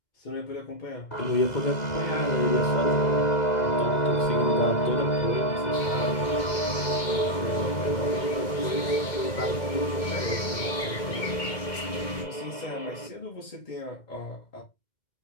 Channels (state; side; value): late; right; 2.2 ms